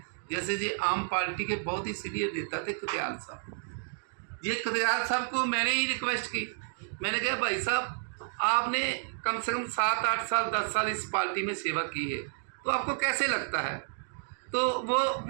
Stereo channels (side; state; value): left; silent; digital silence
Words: जैसे ये आम पार्टी के बहुत ही सीनियर नेता थे कदयाल साहब, ये कदयाल साहब को मैंने ही रिक्वेस्ट की। मैंने कहा भाई साहब, आपने कम से कम 7-8 साल 10 साल इस पार्टी में सेवा की है, तो आपको कैसे लगता है? तो